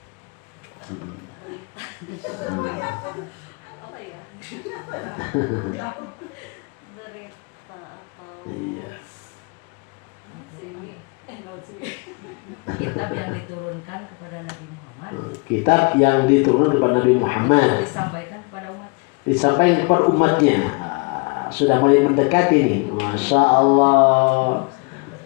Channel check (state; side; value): quieter; right; 31.6 dB